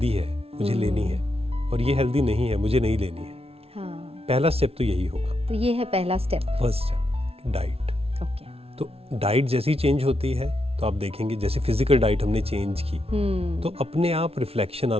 है, मुझे लेनी है, और ये हेल्दी नहीं है, मुझे नहीं लेनी है। पहला स्टेप तो यही होगा। तो ये है पहला step, first step, diet. Okay. तो डाइट जैसी चेंज होती है तो आप देखेंगे, जैसे फिजिकल डाइट हमने चेंज की तो अपने आप रिफ्लेक्शन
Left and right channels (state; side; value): late; left; 0.29 ms